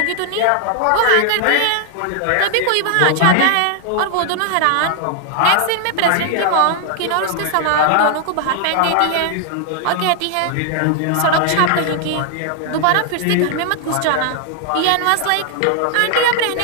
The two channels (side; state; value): both; different; correlation 0.00